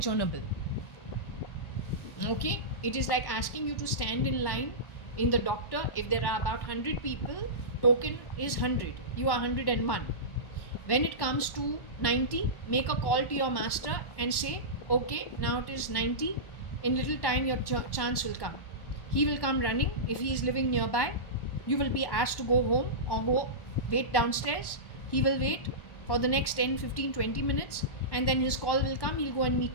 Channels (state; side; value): late; right; 1.1 ms